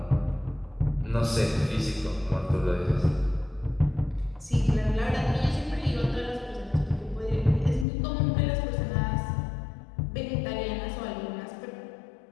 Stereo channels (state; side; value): drops out; right; at 7.9 s